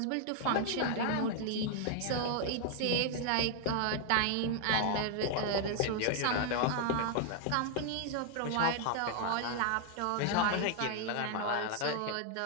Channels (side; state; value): both; different; correlation 0.00